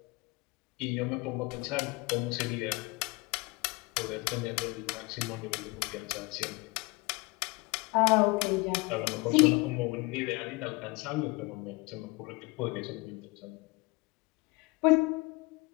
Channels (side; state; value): right; quieter; 25.5 dB